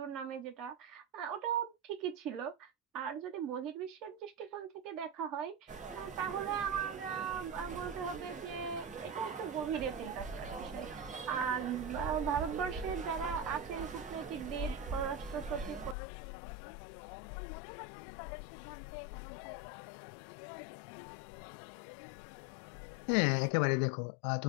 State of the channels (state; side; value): drops out; right; at 16.0 s